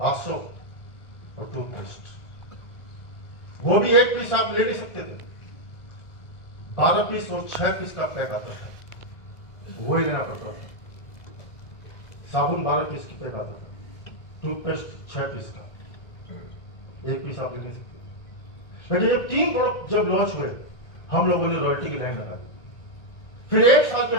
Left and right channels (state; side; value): late; right; 1.4 ms